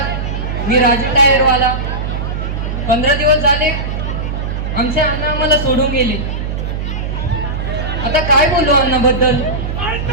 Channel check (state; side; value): noise; right; hum, 3 dB below the sound